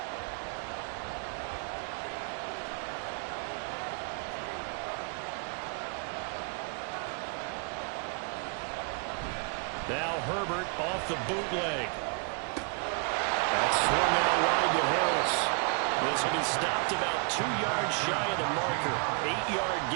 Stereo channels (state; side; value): quieter; left; 37.1 dB